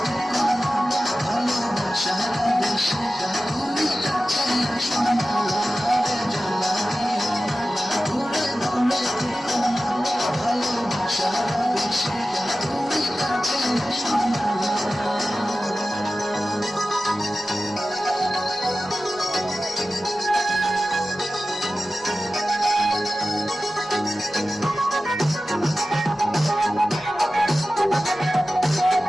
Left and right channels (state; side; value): noise; left; rumble, 30 dB below the sound